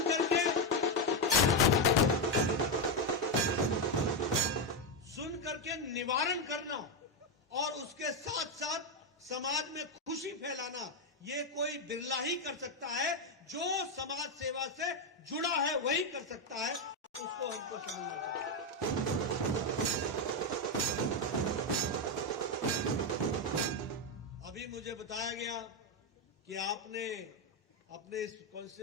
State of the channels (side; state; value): both; normal; correlation 0.06